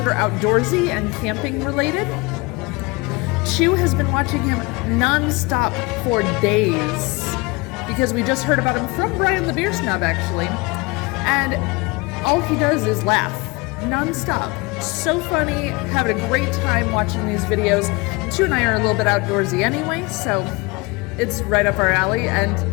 are outdoorsy and camping related. Chew has been watching him non-stop for days because we just heard about him from Brian the Beer Snob actually. And all he does is laugh non-stop. So funny, having a great time watching these videos. Chew and I are a little bit outdoorsy anyway, so it's right up our alley, and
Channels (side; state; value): right; quieter; 25.8 dB